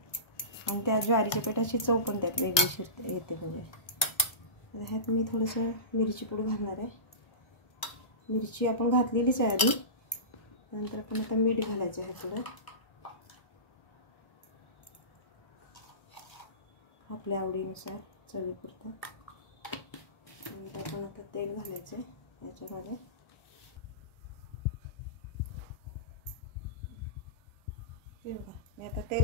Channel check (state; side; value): late; right; 1.2 ms